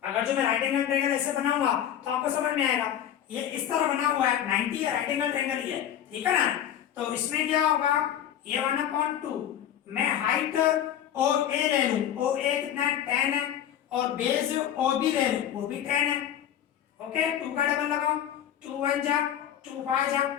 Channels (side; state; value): right; quieter; 10.3 dB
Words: अगर जो मैं राइट एंगल ट्रायंगल ऐसे बनाऊंगा तो आपको समझ में आएगा, ये इस तरह बना हुआ है, 90 राइट एंगल ट्रायंगल ही है। ठीक है ना, तो इसमें क्या होगा, ये 1/2 मैं हाइट OA ले लूं, OA कितना है 10 है, और बेस OB ले लूं, वो भी 10 है। ओके, 2 का डबल लगाओ, 2 1 जा 2 5 जा,